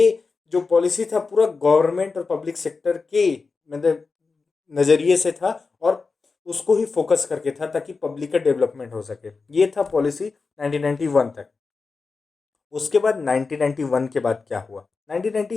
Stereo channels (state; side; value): quieter; right; 4.4 dB